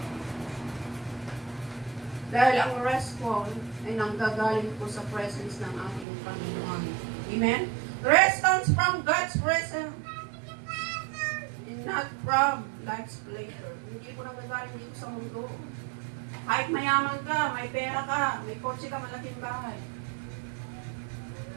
Dahil ang rest ko ay nanggagaling po sa presence ng ating Panginoon. Amen? Rest comes from God's presence and not from life's pleasure. Hindi po nanggagaling dito sa mundo. Kahit mayaman ka, may pera ka, may kotse ka, malaking bahay.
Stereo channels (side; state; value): left; drops out; at 6.1 s